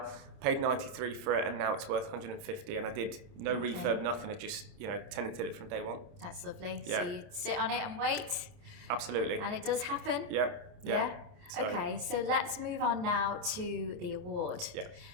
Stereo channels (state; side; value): late; left; 29 ms